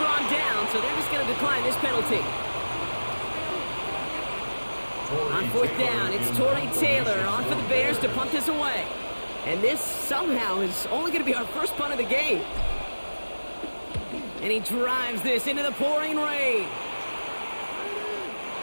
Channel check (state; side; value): inverted; both; correlation -1.00